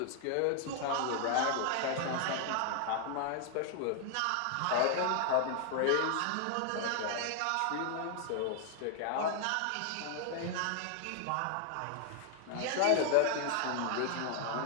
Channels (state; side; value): different; both; correlation 0.00